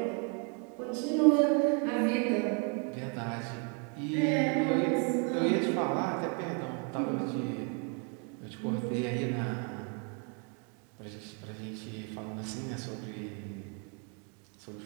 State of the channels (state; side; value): quieter; left; 38.0 dB